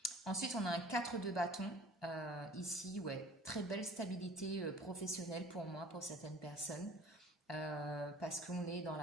Ensuite, on a un 4 de bâton. Ici, ouais, très belle stabilité professionnelle pour moi, pour certaines personnes. Parce qu'on est dans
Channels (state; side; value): normal; both; correlation 0.48